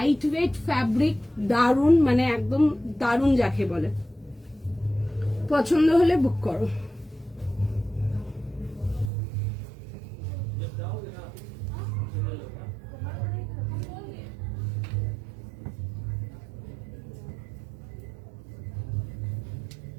weight fabric, দারুণ, মানে একদম দারুণ যাকে বলে। পছন্দ হলে বুক করো।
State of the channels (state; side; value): drops out; left; at 9.1 s